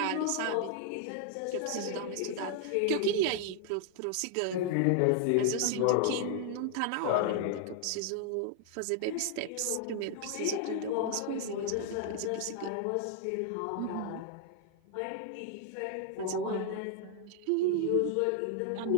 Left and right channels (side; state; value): both; different; correlation 0.00